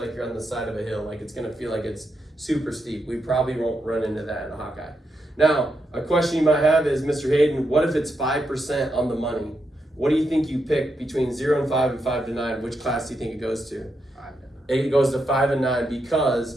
you're on the side of a hill, like it's gonna feel like it's super steep. We probably won't run into that in a Hawkeye. Now, a question you might have is, Mr. Hayden, what if it's 5% on the money? What do you think you pick between 0 and 5 and 5 to 9? Which class do you think it goes to? 5 to 9. It goes to 5 and 9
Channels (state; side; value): normal; both; correlation 0.83